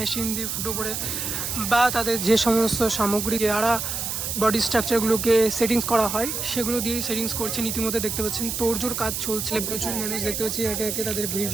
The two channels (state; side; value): noise; right; hiss, 3 dB below the sound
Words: দিয়ে ফুটো করে বা তাদের যে সমস্ত সামগ্রী দ্বারা বডি স্ট্রাকচারগুলোকে সেটিংস করা হয় সেগুলো দিয়েই সেটিংস করছেন। ইতিমধ্যে দেখতে পাচ্ছেন তোড়জোড় কাজ চলছে, প্রচুর মানুষ দেখতে পাচ্ছি একে একে তাদের ভিড়